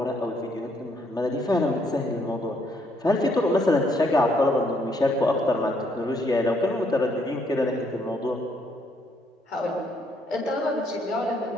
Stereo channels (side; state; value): both; normal; correlation 0.70